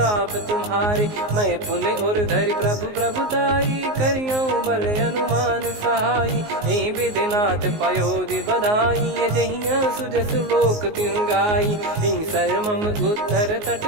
तुम्हारे मैं पुण्य और धरि प्रभु प्रभुताई करियो बल अनुमान सहाई यही विधिनाथ पयोधि बधाई जहिया सुजस लोक तिहु गाई यही सरमम उत्तर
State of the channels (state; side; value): late; left; 19 ms